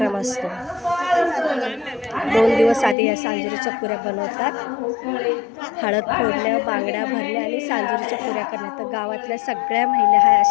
असतो। 2 दिवस आधी या सांजुरेच्या पुऱ्या बनवतात। हळद फोडणं, बांगड्या भरणे आणि सांजुरेच्या पुऱ्या करणे। तर गावातल्या सगळ्या महिला ह्या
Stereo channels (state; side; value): drops out; right; at 3.0 s